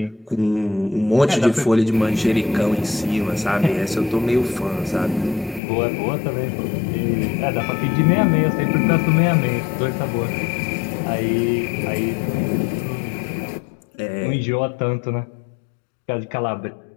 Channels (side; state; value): right; drops out; at 5.6 s